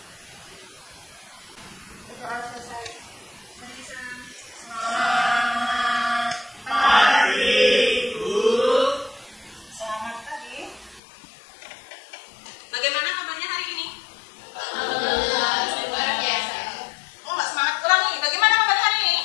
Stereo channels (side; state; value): right; drops out; at 11.0 s